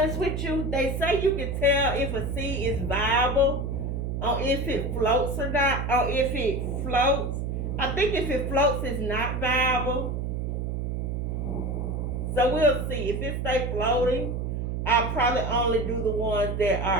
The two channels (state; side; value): noise; right; hum, 2 dB below the sound